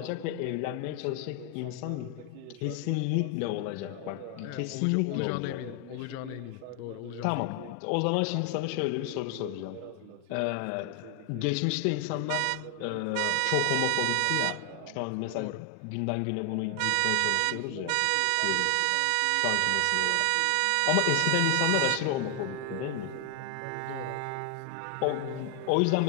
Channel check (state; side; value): different; both; correlation 0.00